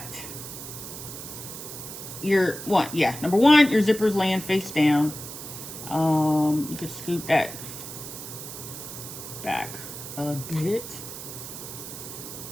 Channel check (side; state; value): right; noise; hiss, 10 dB below the sound